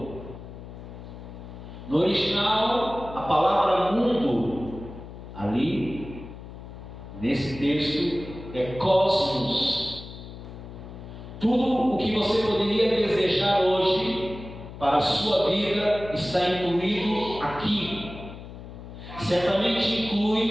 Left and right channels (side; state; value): left; noise; hum, 13 dB below the sound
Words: No original, a palavra mundo, ali, nesse texto, é cosmos. Tudo o que você poderia desejar hoje para a sua vida está incluído aqui. Certamente